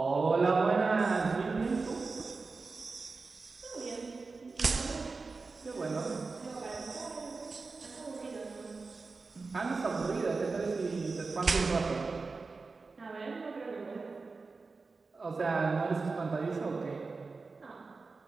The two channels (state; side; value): quieter; left; 4.1 dB